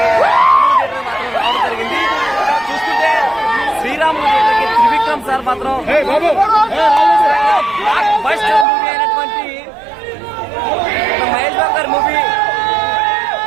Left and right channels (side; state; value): left; drops out; at 8.7 s